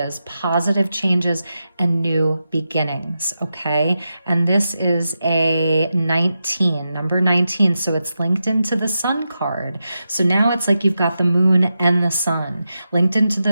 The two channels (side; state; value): both; inverted; correlation -0.89